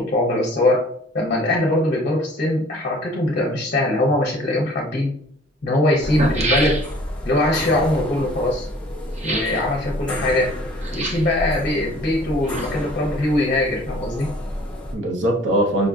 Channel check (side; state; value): both; normal; correlation 0.51